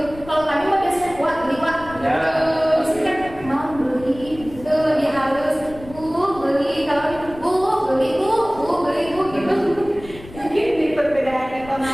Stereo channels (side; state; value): left; noise; rumble, 17 dB below the sound